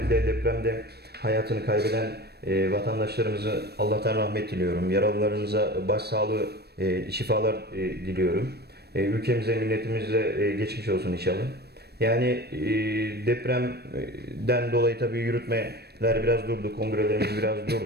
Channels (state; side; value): late; left; 0.47 ms